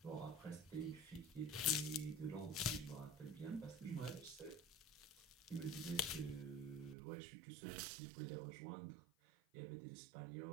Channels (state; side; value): drops out; left; at 7.0 s